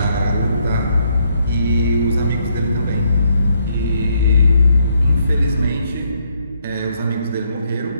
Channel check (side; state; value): both; inverted; correlation -0.73